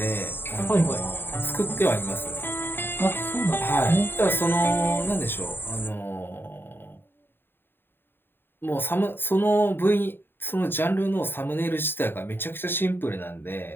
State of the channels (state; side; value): late; right; 0.10 ms